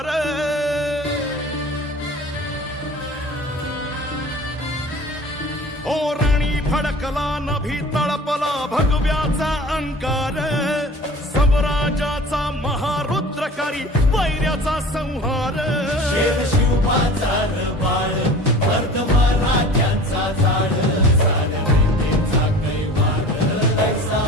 ओ रणी फडकला नभी तळपला भगव्याचा अंगार स्वराजाचा महारुद्रकारी वैर्याचा संहार शिवबाचा बाळ वर्ध मराठ्यांचा झाड झाड वैद्येचा कैवार ऐसा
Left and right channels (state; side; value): normal; both; correlation 0.42